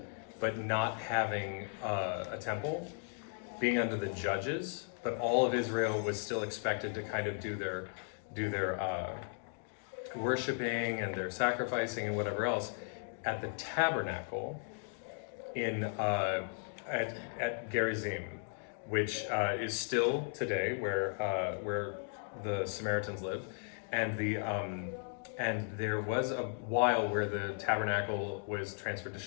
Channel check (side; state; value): right; silent; 54 dB below the other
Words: but not having a temple, being under the judges, but all of Israel was still expected to kind of do their worshiping and their sacrificing and whatever else at the tabernacle at Gerizim, which is still today where the Samaritans lived, and and there was a while where the tabernacle was transferred to